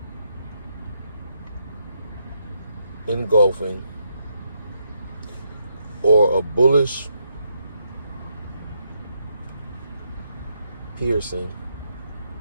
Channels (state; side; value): inverted; both; correlation -0.78